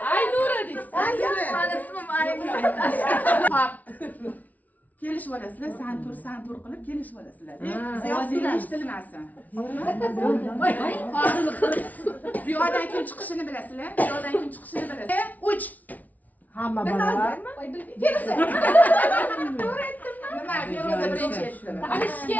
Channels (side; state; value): right; late; 0.075 ms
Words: Aynura deysiz. Mani ismim Aynura. Hop. Kelishib olasizlar, san tur qilib kelishib olasizlar. Ovozingiz eshitilmasin. Bu yoqdan kim chiqishini bilasizlar? Bu yoqdan kim chiqishini bilasizlar? 3. Hamma baravar. Feruza. Nima? Feruza birinchi aytdi. Tanishishga